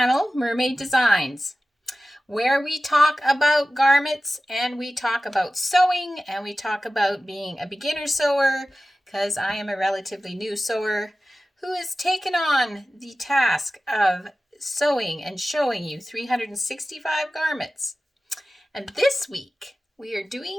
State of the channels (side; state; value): both; normal; correlation 0.95